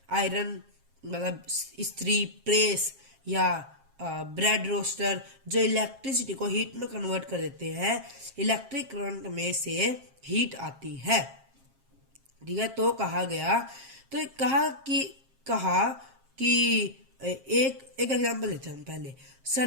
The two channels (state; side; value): late; left; 7.5 ms